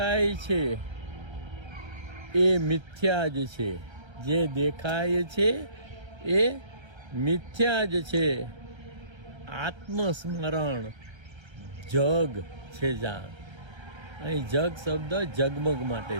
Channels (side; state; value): left; late; 1.3 ms